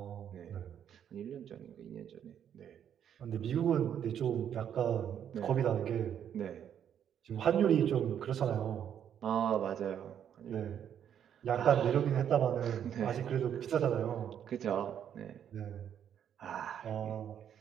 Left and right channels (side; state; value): left; quieter; 9.2 dB